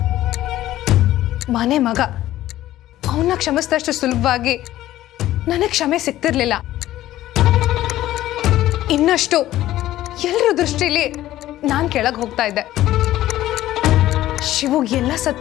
ಮನೆ ಮಗ ಅವನ್ನ ಕ್ಷಮಿಸಿದಷ್ಟು ಸುಲಭವಾಗಿ ನನಗೆ ಕ್ಷಮೆ ಸಿಗ್ತಿರ್ಲಿಲ್ಲ. ಇನ್ನಷ್ಟು ಎಲ್ಲರ ದೃಷ್ಟಿಲಿ ನಾನು ಕೆಳಗೆ ಹೋಗ್ತಾ ಇದ್ದೆ. ಶಿವುಗ್ ಎಲ್ಲ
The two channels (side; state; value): right; quieter; 14.3 dB